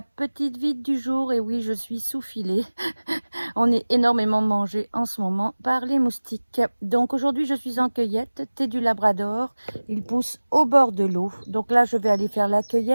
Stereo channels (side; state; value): both; inverted; correlation -1.00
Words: vide du jour. Et oui, je suis sous filet. On est énormément mangé en ce moment par les moustiques. Donc aujourd'hui, je suis en cueillette, thé du Labrador. Il pousse au bord de l'eau. Donc là, je vais aller faire la